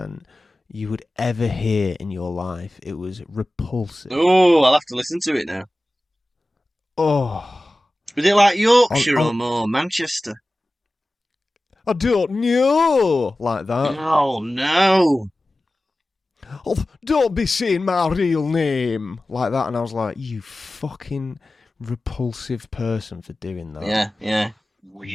you would ever hear in your life. It was repulsive. Oh, I'll have to listen to it now. Oh. Was it like Yorkshire or more Manchester? I don't know. Like that. Oh, no. Oh, don't be saying my real name. Like that. And I was like, you fucking repulsive person for doing that. Yeah, yeah.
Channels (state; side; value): normal; both; correlation 0.96